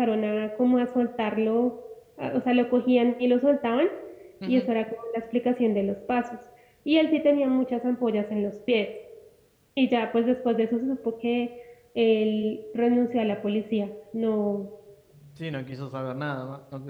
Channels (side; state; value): both; identical; correlation 1.00